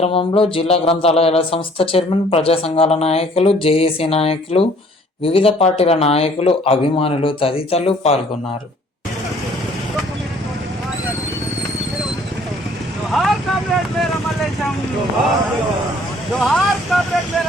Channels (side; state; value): both; normal; correlation 0.57